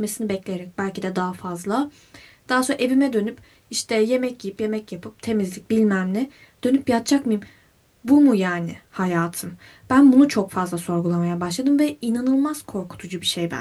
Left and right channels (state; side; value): identical; both; correlation 1.00